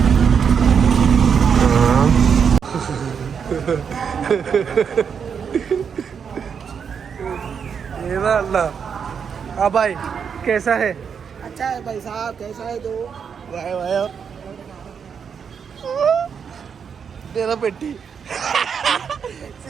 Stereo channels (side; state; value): left; quieter; 6.9 dB